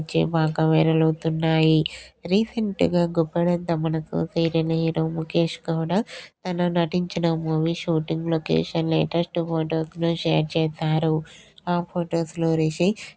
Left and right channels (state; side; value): identical; both; correlation 1.00